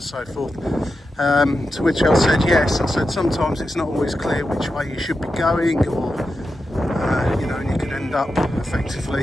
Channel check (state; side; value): normal; both; correlation 0.89